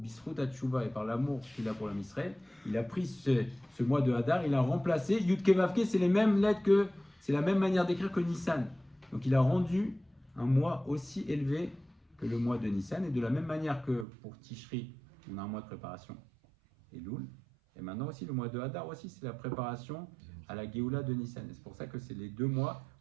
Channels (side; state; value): left; drops out; at 14.1 s